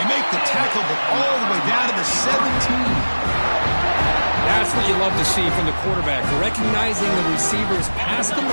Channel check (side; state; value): both; inverted; correlation -1.00